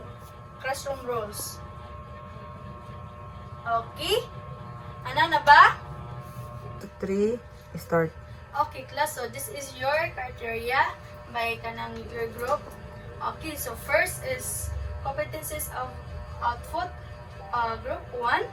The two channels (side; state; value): both; identical; correlation 1.00